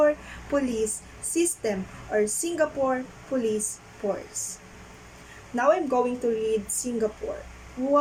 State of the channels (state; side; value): identical; both; correlation 1.00